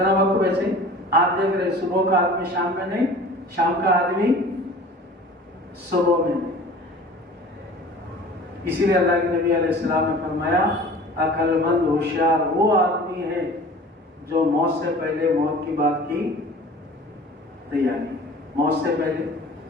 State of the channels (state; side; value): normal; both; correlation 0.43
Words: وقت بچے آپ دیکھ رہے, صبح کا آدمی شام میں نہیں, شام کا آدمی صبح میں نہیں. اسی لیے اللہ کے نبی علیہ السلام نے فرمایا عقل مند ہوشیار وہ آدمی ہے جو موت سے پہلے موت کی بات کی تیاری. موت سے پہلے